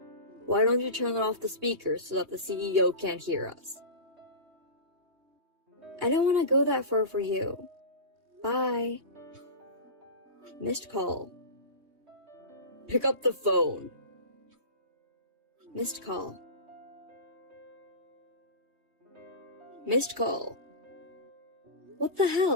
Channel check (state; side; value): late; left; 3.2 ms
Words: Why don't you turn off the speakers so that the CEO can't hear us? I don't want to go that far for you. Bye. Missed call. Pick up the phone. Missed call. Missed call. What the